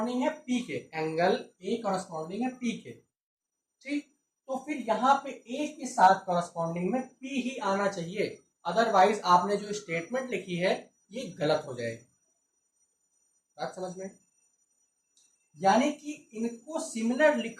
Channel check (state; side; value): identical; both; correlation 1.00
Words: है पी के, एंगल ए कॉरस्पॉन्डिंग है पी के। ठीक, तो फिर यहाँ पे ए के साथ कॉरस्पॉन्डिंग में पी ही आना चाहिए, अदरवाइज आपने जो स्टेटमेंट लिखी है ये गलत हो जाएगी। बात समझ में, यानी कि इनको सिमिलर